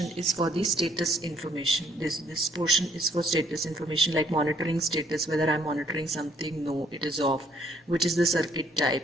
is for the status information. This portion is for status information, like monitoring status, whether I'm monitoring something, no, it is off, which is the circuit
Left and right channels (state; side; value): normal; both; correlation 0.66